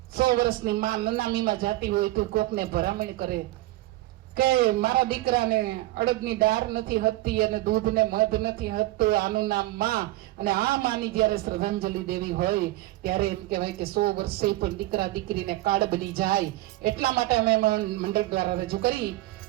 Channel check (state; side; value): quieter; left; 17.6 dB